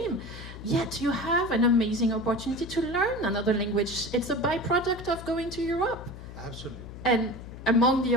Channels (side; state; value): left; noise; hum, 13 dB below the sound